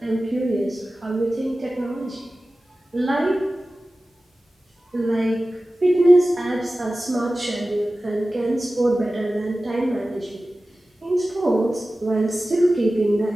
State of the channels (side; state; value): both; normal; correlation 0.96